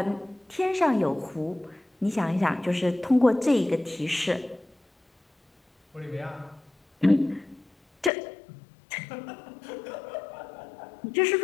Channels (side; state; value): right; drops out; at 8.1 s